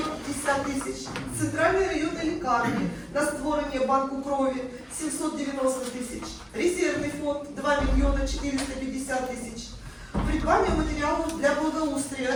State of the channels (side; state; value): both; identical; correlation 1.00